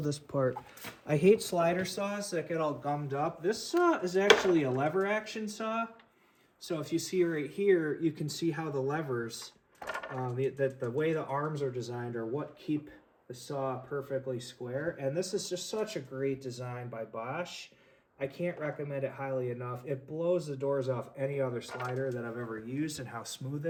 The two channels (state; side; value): identical; both; correlation 1.00